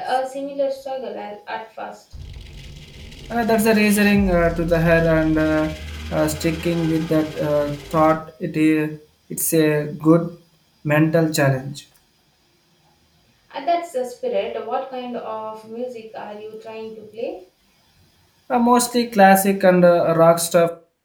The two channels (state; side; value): identical; both; correlation 1.00